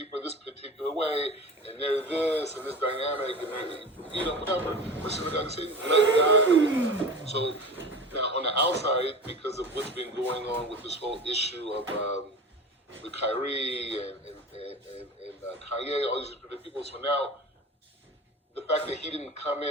are this particular way, and they're this, and this dynamic, and they're, whatever, listen to God and say, let God deal with that. So now on the outside, because of what's been going on with this whole issue of with Kyrie and Kanye, all these different people, so now the fact that he didn't come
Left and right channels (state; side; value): normal; both; correlation 0.33